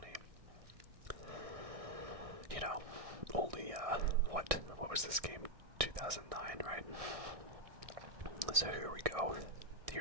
You know, only, what was this game? 2009, right? So here we go.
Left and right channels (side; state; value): left; late; 1.6 ms